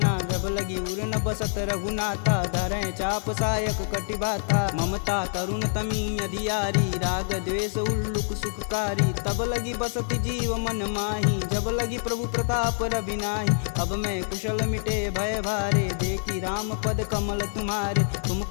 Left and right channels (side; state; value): right; silent; 61 dB below the other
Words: जब लगी उर न बसत रघुनाथा धरें चाप सायक कटिबाथा। ममता तरुण तमी अधियारी राग द्वेष उल्लुक सुखकारी। तब लगी बसत जीव मन माही जब लगी प्रभु प्रताप रविनाही। अब मैं कुशल मिटे भय भारे देखी राम पद कमल तुम्हारे। तुम